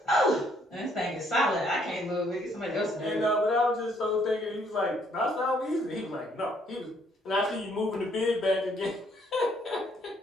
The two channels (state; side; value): normal; both; correlation 0.67